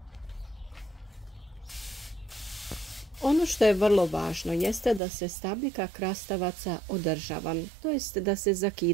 Ono što je vrlo važno jeste da se stabljika krastavaca održava, to jest da se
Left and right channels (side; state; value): left; drops out; at 5.0 s